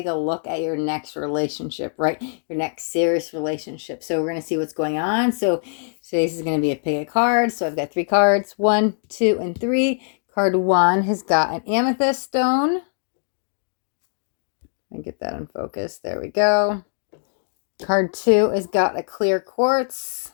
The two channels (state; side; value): silent; right; digital silence